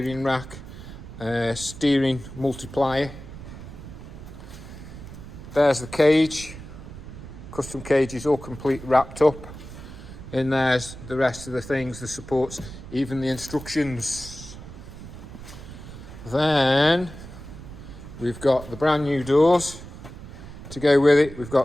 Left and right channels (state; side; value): noise; right; rumble, 13 dB below the sound